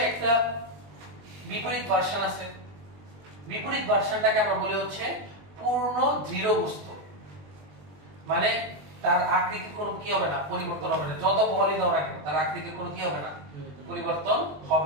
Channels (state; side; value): late; left; 20 ms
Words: একটা বিপরীত ভার্সন আছে। বিপরীত ভার্সনটাকে আমরা বলি হচ্ছে পূর্ণ দৃঢ় বস্তু। মানে তার আকৃতির কোনো কি হবে না, পরিবর্তন হবে না, যত বলই দাও না কেন তার আকৃতির কোনো কি হবে না, পরিবর্তন